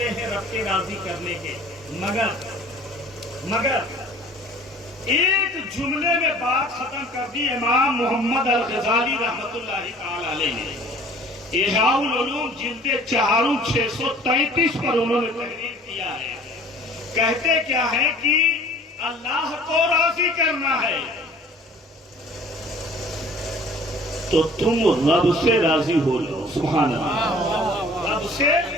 ہیں رب کے راضی کرنے کے، مگر ایک جملے میں بات ختم کر دی امام محمد الغزالی رحمۃ اللہ تعالی علیہ نے۔ احیاء العلوم جلد 4 633 پر انہوں نے تحریر کیا ہے۔ کہتے کیا ہے کہ اللہ کو راضی کرنا ہے تو تم رب سے راضی ہو جاؤ، سبحان اللہ، رب سے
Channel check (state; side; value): normal; both; correlation 0.49